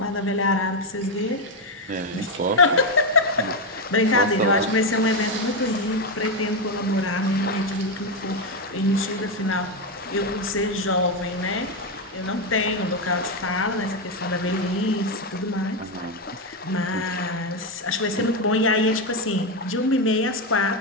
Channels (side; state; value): both; normal; correlation 0.07